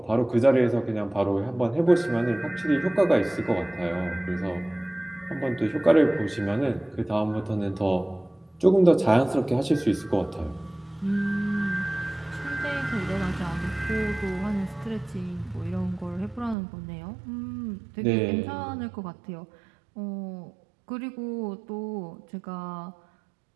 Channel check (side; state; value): left; drops out; at 16.6 s